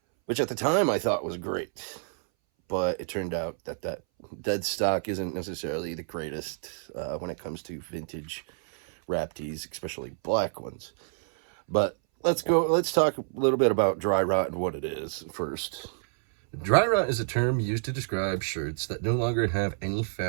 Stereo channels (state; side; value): silent; left; 59 dB below the other